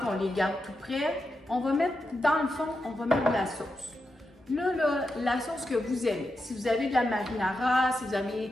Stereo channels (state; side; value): normal; both; correlation 0.87